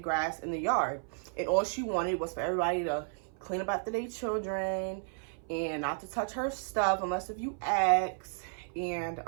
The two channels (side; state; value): left; silent; 56 dB below the other